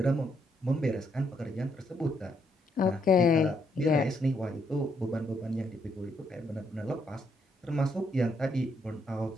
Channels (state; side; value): normal; both; correlation 0.74